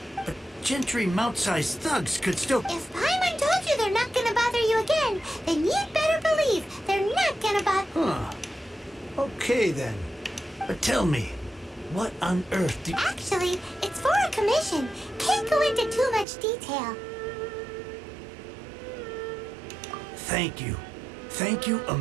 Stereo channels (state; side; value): drops out; left; at 16.2 s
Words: But Gentry mount-sized thugs could still... If Paimon told you they're not gonna bother you again, then you'd better believe they're not gonna bother... Huh. Okay, then. But tell me, what on earth do... Actually, it's for a commission. Can't go into too much detail. Thank you. Thank you a